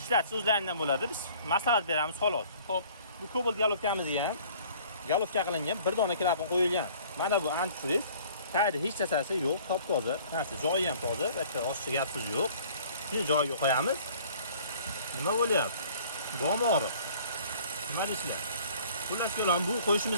Ishlatish o'zlaridan bo'ladi. Biz maslahat beramiz xolos. Xo'p, bu Cobalt galofkamizga ham galofka qilingan bir dona klapan qo'yilgan. Mana bu antifriz. Tayyorda hech narsasi yo'q, top-toza. Narsa joyi ham toza, bitta oshcha gap so'z yo'q. Shuni joyiga qo'yamiz. Nima bo'lyapti? Bo'mori. Nima deysizlar? Xullas kelam, bu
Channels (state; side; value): inverted; both; correlation -0.52